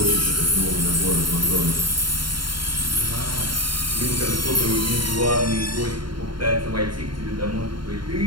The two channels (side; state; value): left; late; 0.72 ms